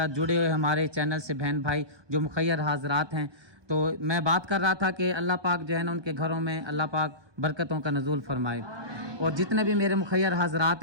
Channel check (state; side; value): late; left; 1.2 ms